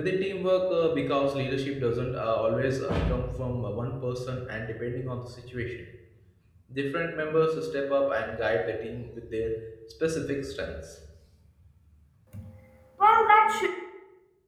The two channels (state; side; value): identical; both; correlation 1.00